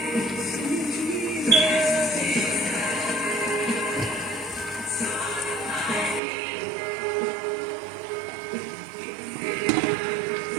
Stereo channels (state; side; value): drops out; left; at 6.2 s